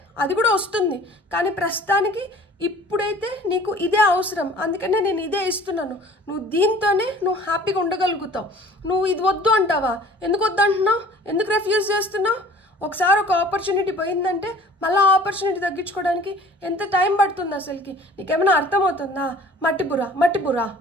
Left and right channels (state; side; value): normal; both; correlation 0.49